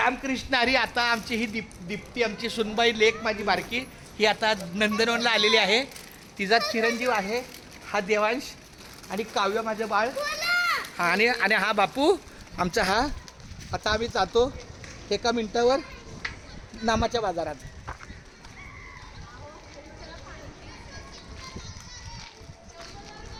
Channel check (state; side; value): identical; both; correlation 1.00